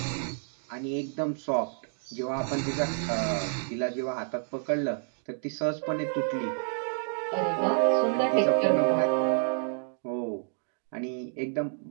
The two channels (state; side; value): silent; left; 58 dB below the other